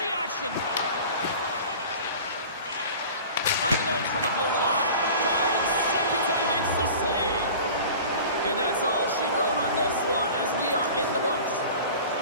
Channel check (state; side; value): inverted; both; correlation -0.40